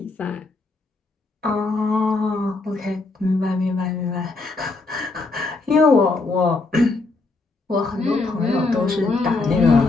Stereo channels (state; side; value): quieter; right; 3.5 dB